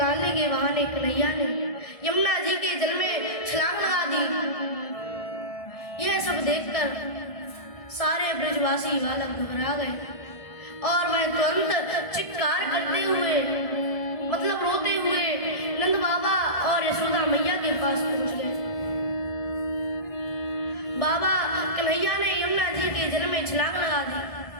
के बहाने कन्हैया ने यमुना जी के जल में छलांग लगा दी। यह सब देखकर सारे ब्रजवासी बालक घबरा गए और वह तुरंत चित्कार करते हुए मतलब रोते हुए नंद बाबा और यशोदा मैया के पास पहुंच गए। बाबा कन्हैया ने यमुना जी के जल में छलांग लगा दी।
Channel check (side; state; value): right; late; 1.5 ms